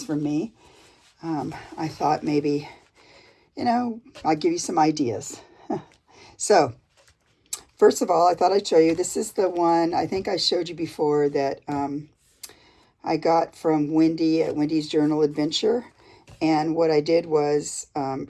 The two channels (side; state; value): both; identical; correlation 1.00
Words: from me, I thought maybe, I'd give you some ideas. So first of all, I thought I'd show you. This is the one I think I showed you before that I got from Wendy at Wendy's Journal Adventure. And what I did was,